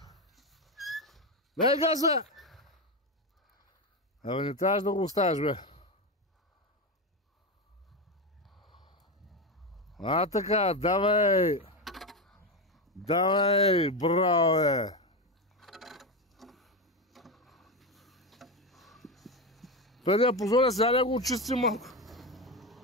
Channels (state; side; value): normal; both; correlation 0.14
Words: Дай газа! Абе, не трябваш да го оставиш, бе. А, така, давай! Давай, браво, бе! Преди да позоря, сега да го очистим малко.